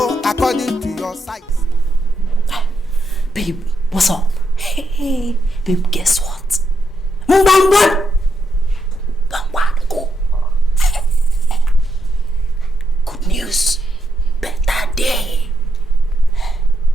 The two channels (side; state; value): both; normal; correlation 0.80